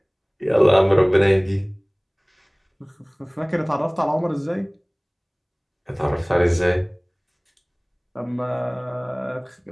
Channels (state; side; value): identical; both; correlation 1.00